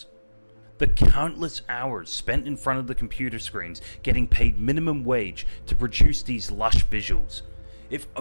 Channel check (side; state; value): both; inverted; correlation -1.00